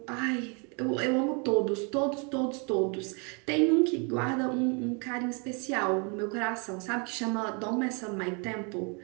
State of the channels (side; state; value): left; quieter; 34.4 dB